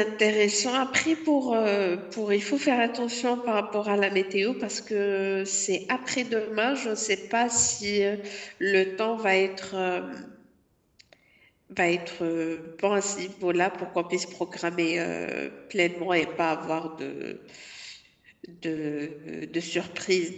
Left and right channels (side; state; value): both; identical; correlation 1.00